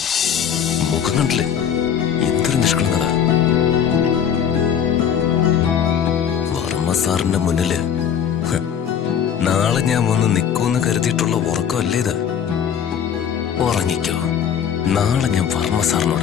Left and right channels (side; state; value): right; quieter; 8.3 dB